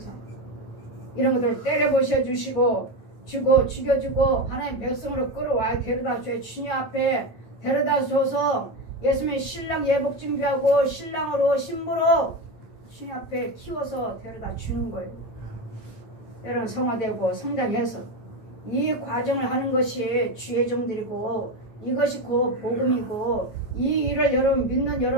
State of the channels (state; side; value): late; right; 9.0 ms